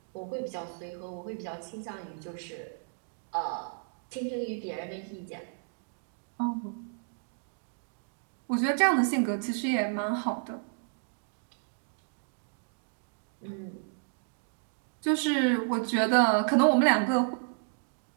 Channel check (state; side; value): silent; left; digital silence